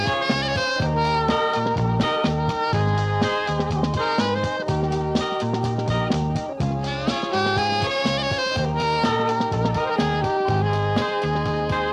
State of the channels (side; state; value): both; identical; correlation 1.00